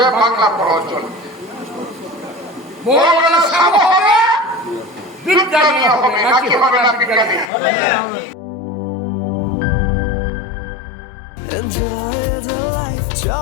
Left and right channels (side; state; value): right; drops out; at 7.5 s